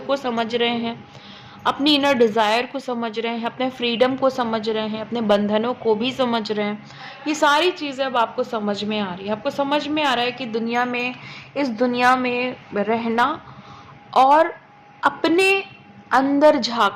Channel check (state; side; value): identical; both; correlation 1.00